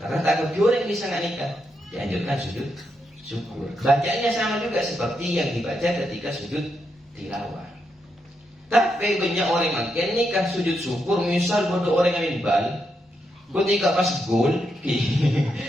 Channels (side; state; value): both; normal; correlation 0.82